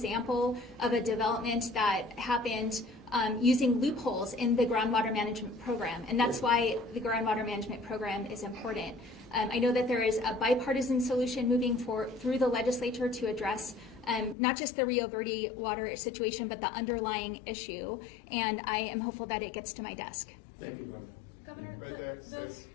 of a development that happened using loopholes in the groundwater management program, and that's why the groundwater management program is important. I know that there is a bipartisan solution moving through the legislature to address not just the Rio Verde water situation, but the underlying issue, and I am hopeful that it gets to my desk. Thank you very much. Governor, Right there, those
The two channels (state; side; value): drops out; right; at 14.4 s